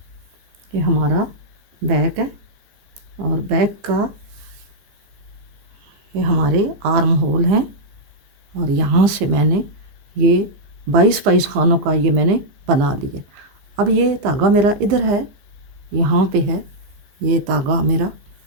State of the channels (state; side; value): late; left; 15 ms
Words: ये हमारा बैक है और बैक का ये हमारे आर्म होल हैं और यहाँ से मैंने ये 22 खानों का ये मैंने बना लिया। अब ये धागा मेरा इधर है, यहाँ पे है ये धागा मेरा।